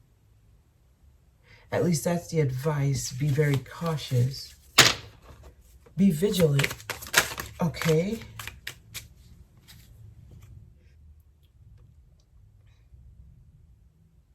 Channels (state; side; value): identical; both; correlation 1.00